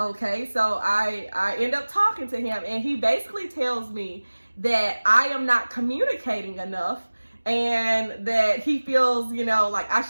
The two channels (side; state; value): both; inverted; correlation -1.00